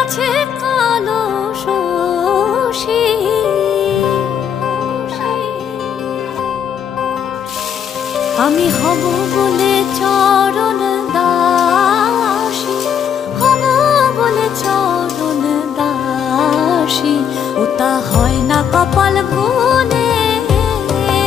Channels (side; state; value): right; quieter; 8.2 dB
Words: কালো শশী। আমি হব বলে চরণ দাসী, হব বলে চরণ দাসী, ওটা হয় না কপাল গুনে,